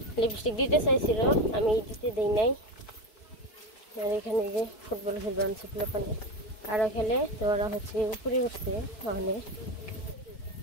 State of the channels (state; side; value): late; right; 4.6 ms